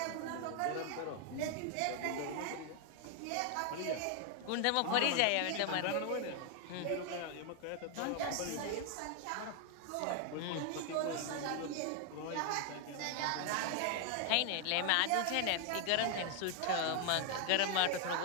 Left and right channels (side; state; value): both; different; correlation 0.00